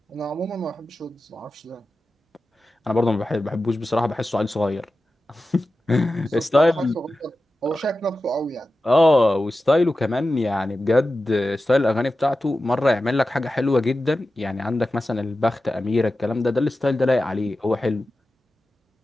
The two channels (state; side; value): normal; both; correlation 0.93